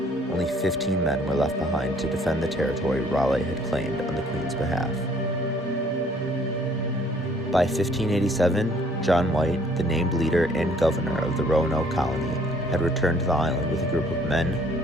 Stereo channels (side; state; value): both; normal; correlation 0.60